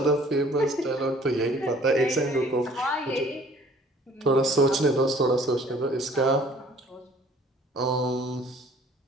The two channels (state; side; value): normal; both; correlation 0.54